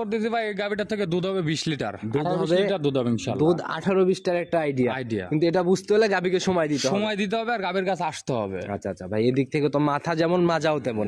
ভাই, এই গাভিটার থেকে দুধ হবে 20 লিটার। দুধ 18-20 হবে, লিটার দুধ হবে ইনশাআল্লাহ। দুধ 18-20টার একটা আইডিয়া। আইডিয়া। কিন্তু এটা বুঝতে হলে গাভীকে সময় দিতে হবে। সময় দিতে হবে আর গাভির কাছে আসতে হবে। আচ্ছা আচ্ছা ভাই, এদিক থেকে তো মাথা যেমন মাজাও তেমন।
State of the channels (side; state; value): both; identical; correlation 1.00